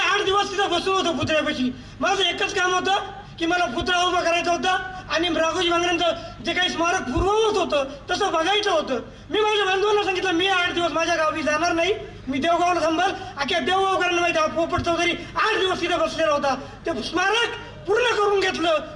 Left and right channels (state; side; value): identical; both; correlation 1.00